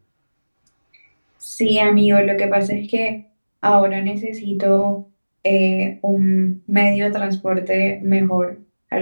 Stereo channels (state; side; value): inverted; both; correlation -1.00